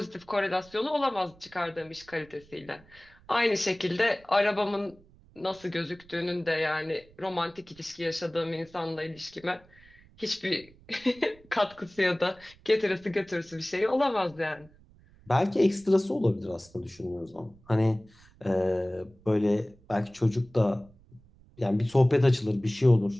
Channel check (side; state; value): right; noise; rumble, 27 dB below the sound